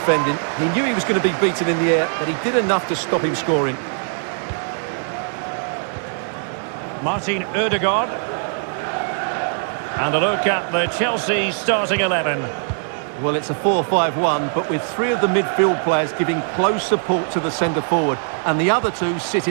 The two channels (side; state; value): left; silent; 65 dB below the other